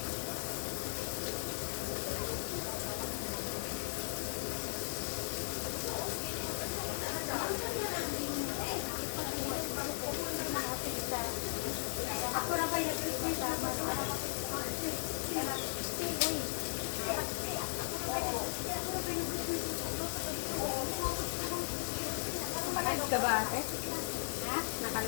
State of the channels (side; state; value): right; silent; digital silence